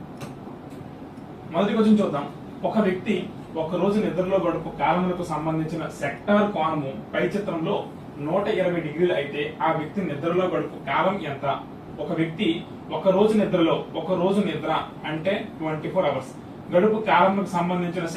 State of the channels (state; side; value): identical; both; correlation 1.00